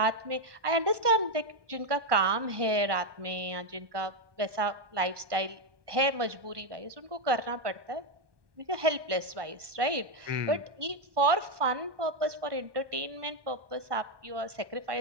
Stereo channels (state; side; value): late; left; 1.2 ms